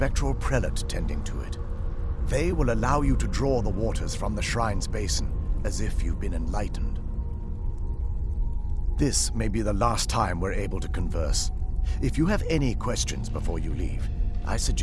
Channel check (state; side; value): identical; both; correlation 1.00